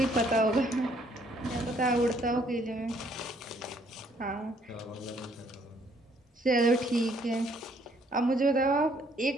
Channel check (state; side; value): normal; both; correlation 0.65